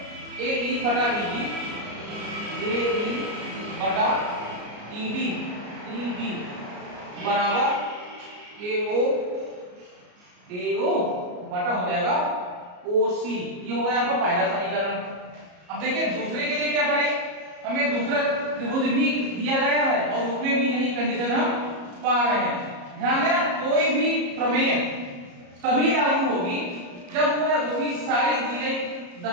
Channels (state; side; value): late; left; 33 ms